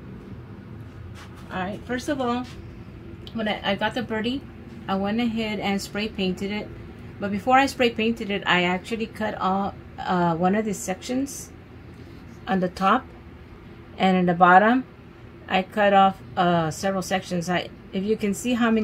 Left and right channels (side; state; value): both; identical; correlation 1.00